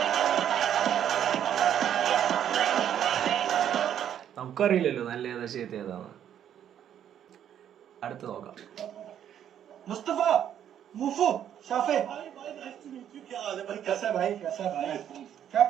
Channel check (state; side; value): quieter; left; 9.9 dB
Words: നമുക്കറിയില്ലല്ലോ നല്ല ഏതാ ചീത്ത ഏതാണ്. അടുത്ത് നോക്കാം. मुस्तफा मुफू शाफे क्या हाल है भाई? कैसा है भाई? कैसा है भाई? क्या